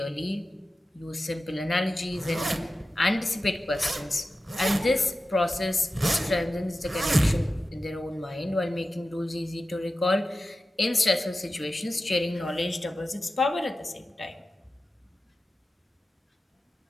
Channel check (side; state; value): both; normal; correlation 0.93